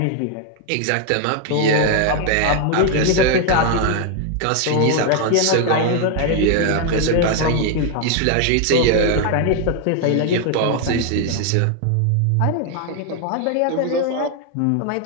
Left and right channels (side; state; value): both; different; correlation 0.01